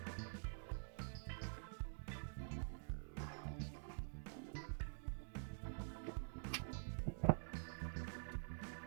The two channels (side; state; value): left; silent; digital silence